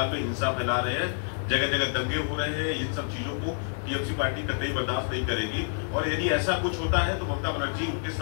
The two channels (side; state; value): right; silent; digital silence